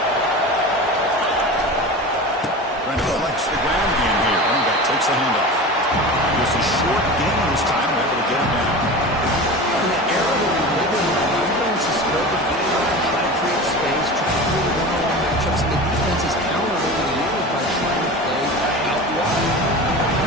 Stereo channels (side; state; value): both; normal; correlation 0.31